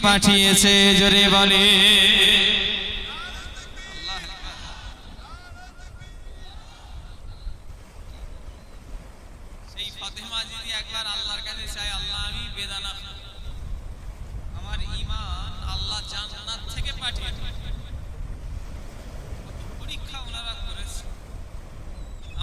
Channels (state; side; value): identical; both; correlation 1.00